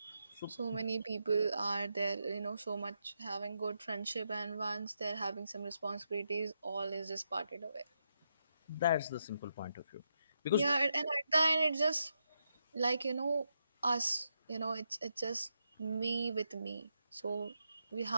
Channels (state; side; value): inverted; both; correlation -0.83